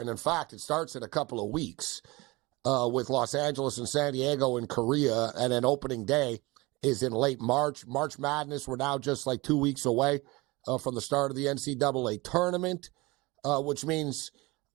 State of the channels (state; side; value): quieter; left; 23.1 dB